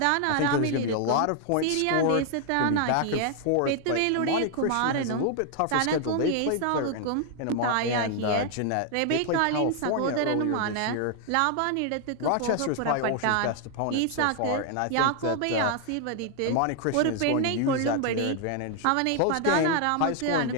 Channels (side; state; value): both; different; correlation 0.00